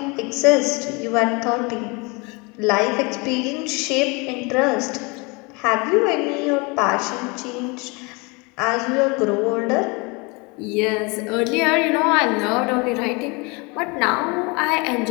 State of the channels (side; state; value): right; quieter; 28.5 dB